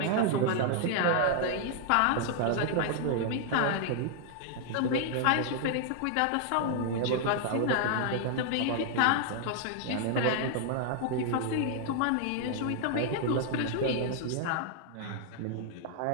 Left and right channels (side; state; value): both; different; correlation 0.00